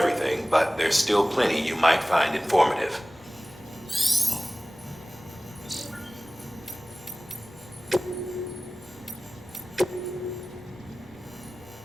but there's still plenty you might find informative.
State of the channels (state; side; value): normal; both; correlation 0.97